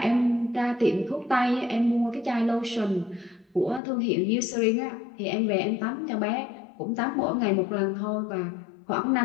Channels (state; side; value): drops out; right; at 3.8 s